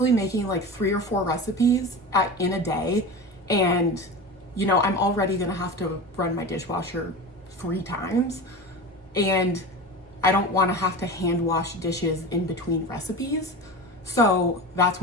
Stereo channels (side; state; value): both; normal; correlation 0.28